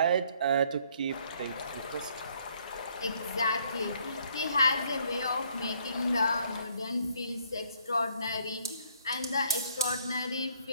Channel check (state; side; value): inverted; both; correlation -0.66